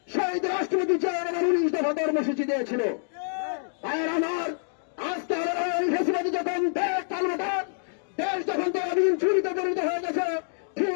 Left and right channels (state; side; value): silent; right; digital silence